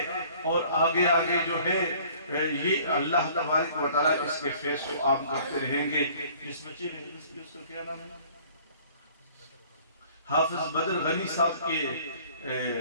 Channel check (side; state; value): both; inverted; correlation -0.54